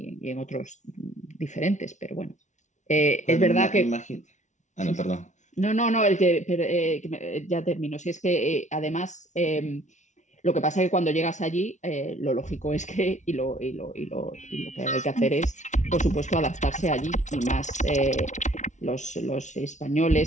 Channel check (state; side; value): late; right; 0.35 ms